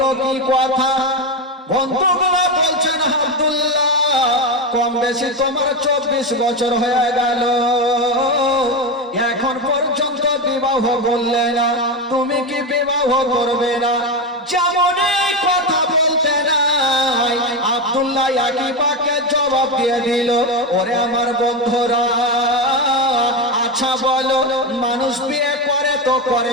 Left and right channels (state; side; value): normal; both; correlation 0.14